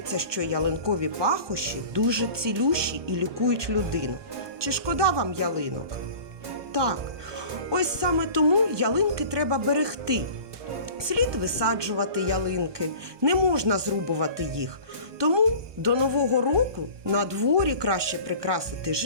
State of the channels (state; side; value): late; left; 1.2 ms